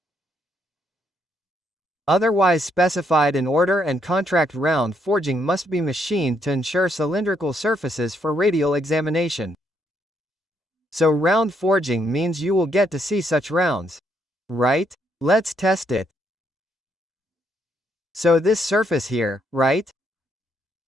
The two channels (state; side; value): normal; both; correlation 0.74